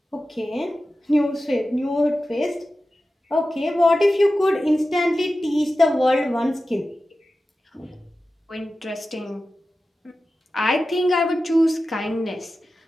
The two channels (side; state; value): both; normal; correlation 0.94